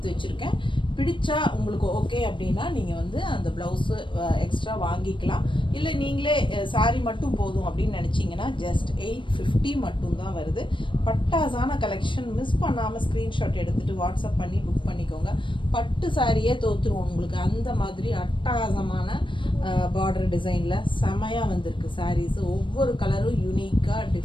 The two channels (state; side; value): late; right; 0.24 ms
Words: வச்சுருக்கேன். பிடிச்சா உங்களுக்கு ஓகே அப்படின்னா நீங்கள் வந்து அந்த ப்ளவுஸு எக்ஸ்ட்ரா வாங்கிக்கலாம். இல்லை நீங்களே சாரீ மட்டும் போதும் அப்படின்னு நினச்சிங்கன்னா ஜஸ்ட் 850 மட்டும்தான் வருது. பட்டாசான கலெக்ஷன். மிஸ் பண்ணாமல் ஸ்க்ரீன்ஷாட் எடுத்துகிட்டு வாட்ஸ்அப் பண்ணி புக் பண்ணிக்கோங்க. பட்டு சாரியே தோற்றுருவோம் உங்களுக்கு, அந்த மாதிரி அட்டகாசமான பார்டர் டிசைனில் செமையாக வந்திருக்கு சாரீஸு. ஒவ்வொரு கலரும் யூனிக்காக